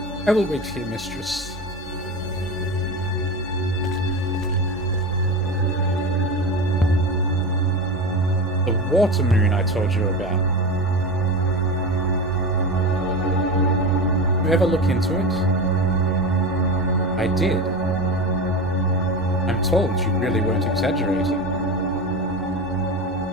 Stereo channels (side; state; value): both; normal; correlation 0.24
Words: I will wait here, mistress. The water moon I told you about. Did you ever look into it? I did. I'm told you really weren't exaggerating.